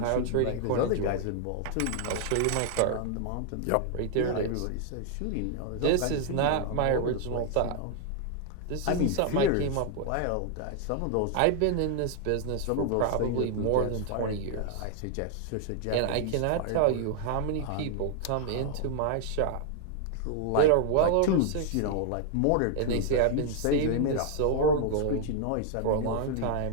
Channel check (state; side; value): different; both; correlation 0.00